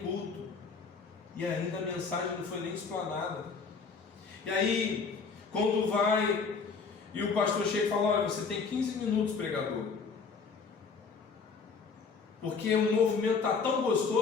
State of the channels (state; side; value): quieter; right; 5.1 dB